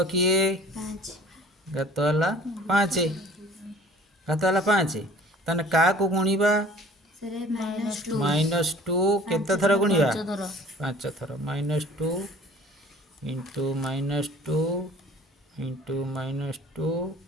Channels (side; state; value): both; normal; correlation 0.49